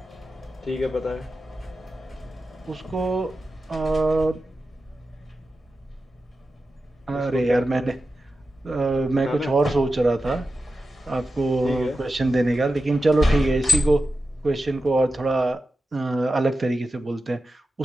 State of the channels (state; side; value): normal; both; correlation 0.92